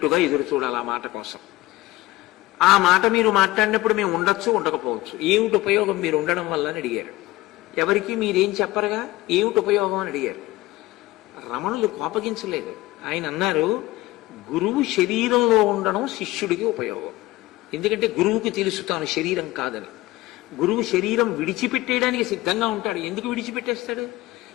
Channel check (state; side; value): quieter; right; 18.6 dB